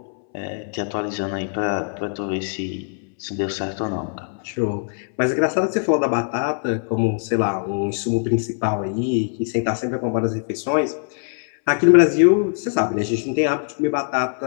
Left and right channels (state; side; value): silent; right; 63 dB below the other